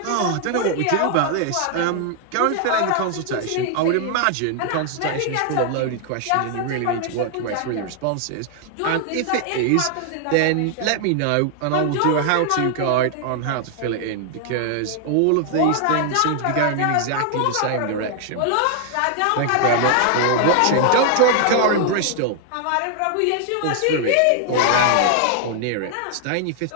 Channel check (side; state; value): both; different; correlation 0.00